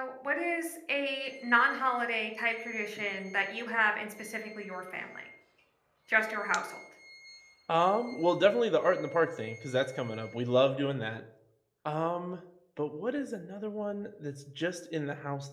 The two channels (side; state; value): both; identical; correlation 1.00